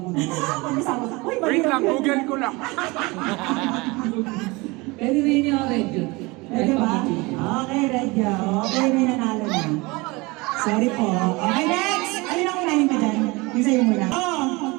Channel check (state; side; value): quieter; left; 24.4 dB